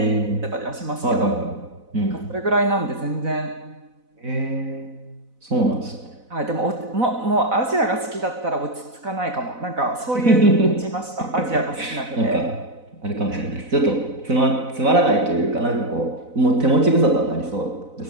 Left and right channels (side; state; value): left; late; 4.0 ms